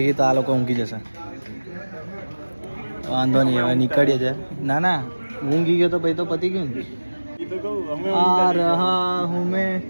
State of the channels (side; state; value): both; inverted; correlation -1.00